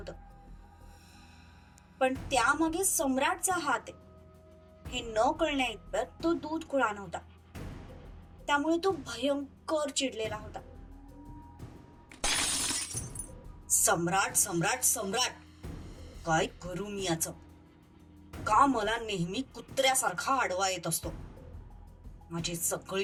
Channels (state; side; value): identical; both; correlation 1.00